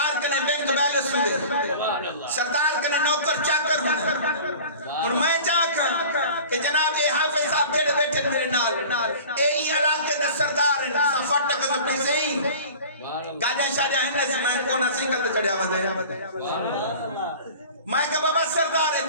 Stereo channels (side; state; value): both; inverted; correlation -0.41